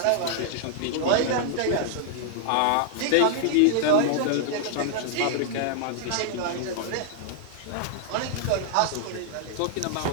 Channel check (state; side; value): different; both; correlation -0.01